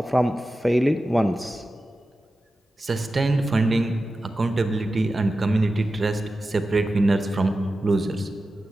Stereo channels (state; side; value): normal; both; correlation 0.93